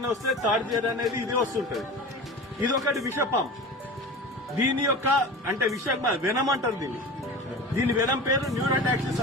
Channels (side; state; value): both; normal; correlation 0.33